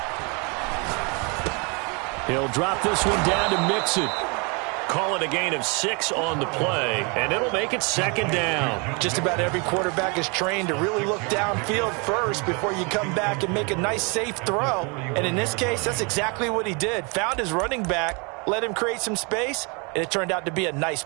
He'll drop this one down to Mixon. Call it a gain of 6 on the play, and it'll make it 2nd down. Just about every quarterback is trained to really look downfield first before you come back and make a nice, safe throw. And in this case, that's exactly what he did. Found his running back, let him create some space, and it turned out to be a nice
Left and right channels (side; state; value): left; quieter; 31.7 dB